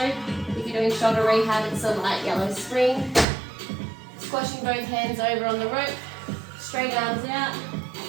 If you're doing shoulder rehab, it's a light yellow spring. Squashing both hands over on the rope, straight arms out,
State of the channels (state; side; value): drops out; left; at 3.2 s